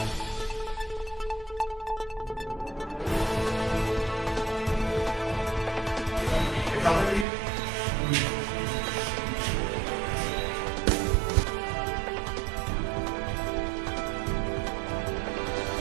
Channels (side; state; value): left; drops out; at 7.2 s